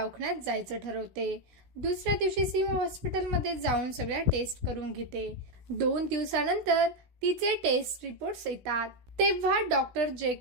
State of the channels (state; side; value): late; left; 16 ms